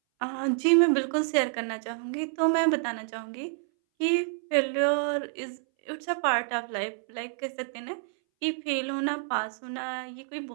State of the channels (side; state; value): left; silent; 59 dB below the other